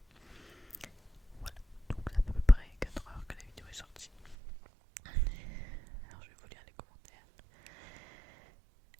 Voilà, donc à peu près 4 heures que la vidéo est sortie. Alors je vais vous lire les commentaires.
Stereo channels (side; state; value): left; drops out; at 4.4 s